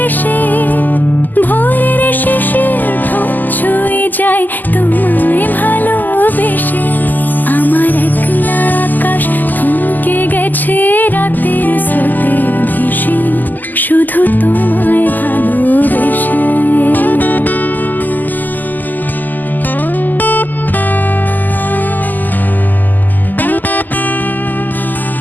এসে, ভোরের শিশির ঠোঁট ছুঁয়ে যায় তোমায় ভালোবেসে। আমার একলা আকাশ থমকে গেছে রাতের স্রোতে ভেসে, শুধু তোমায় ভালোবেসে।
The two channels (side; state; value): right; late; 0.085 ms